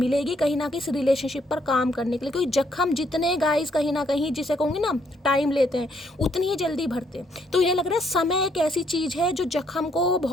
कहीं ना कहीं इस रिलेशनशिप पर काम करने के लिए। क्योंकि जख्म जितने गाइस कहीं ना कहीं, जिसे कहूँगी ना, टाइम लेते हैं, उतनी ही जल्दी भरते हैं। तो ये लग रहा है समय एक ऐसी चीज है जो जख्म को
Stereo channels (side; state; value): both; normal; correlation 0.71